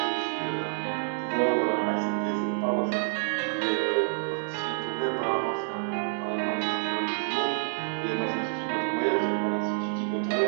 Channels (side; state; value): left; silent; digital silence